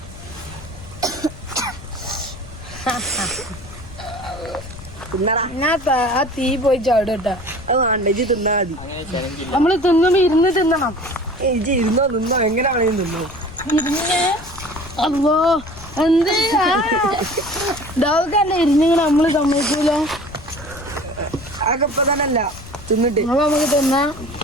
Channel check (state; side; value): noise; left; rumble, 16 dB below the sound